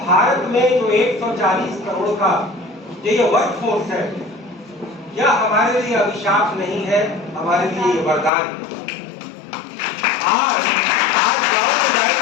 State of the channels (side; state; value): right; drops out; at 8.3 s